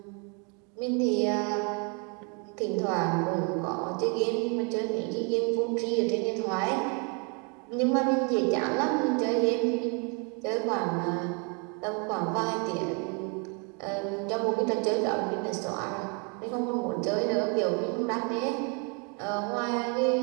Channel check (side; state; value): left; quieter; 35.0 dB